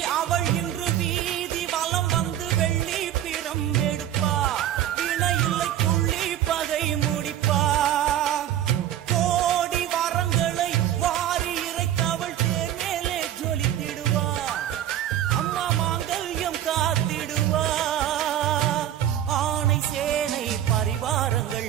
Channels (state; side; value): quieter; left; 11.6 dB